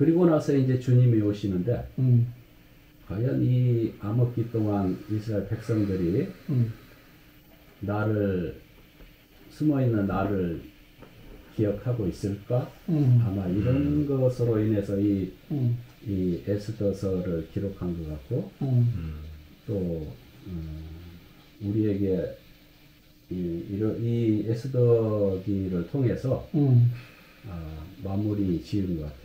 나서 이제 주님이 오시는데 과연 이 암흑기 동안 이스라엘 백성들이 나를 숨어있는 나를 기억하고 있을까? 아마 이런 것으로 인해서 이 에스더서를 기록한 것 같고 또 우리에게 이 에스더기를 통해서 마무리 지은 것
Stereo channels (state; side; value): identical; both; correlation 1.00